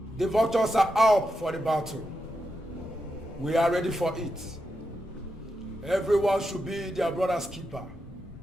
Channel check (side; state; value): both; normal; correlation 0.86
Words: The vultures are up for the battle. We are ready for it. Everyone should be their brother's keeper.